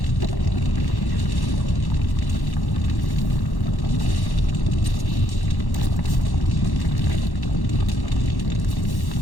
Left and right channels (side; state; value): right; late; 1.1 ms